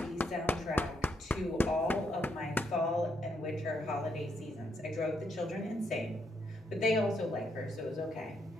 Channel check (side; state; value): both; normal; correlation 0.76